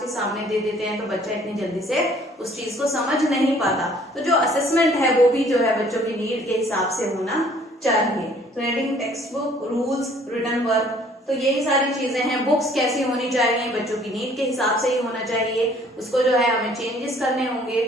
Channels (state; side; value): normal; both; correlation 0.58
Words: सामने दे देते हैं तो बच्चा इतनी जल्दी से उस चीज को समझ नहीं पाता। तो जो असेसमेंट है वो भी जो है बच्चों की नीड के हिसाब से होना चाहिए। तो reading text book, rules, written work, तो यही सारी चीजें हैं। बुक्स कैसी होनी चाहिए, बच्चों की नीड के हिसाब से ही होना चाहिए, उसको जो है हमें चेंजेस करने होंगे।